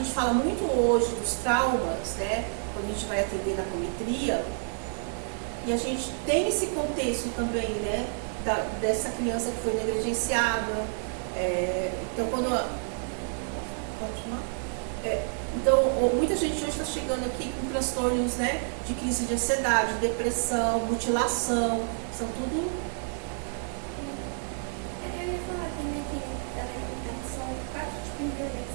fala muito hoje dos traumas, né, quando a gente vai atender na apometria, e a gente tem esse contexto também, né, dessa criança que foi negligenciada. Então, então, muita gente hoje está chegando aqui com transtornos, né, de crise de ansiedade, depressão, mutilação, são tudo. Eu ia falar também que são 4 tipos de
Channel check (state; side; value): silent; left; 59 dB below the other